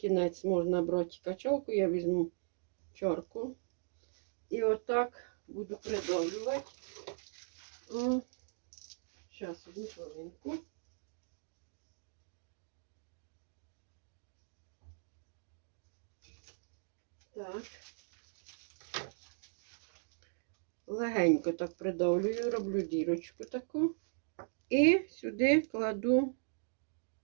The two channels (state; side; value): silent; left; digital silence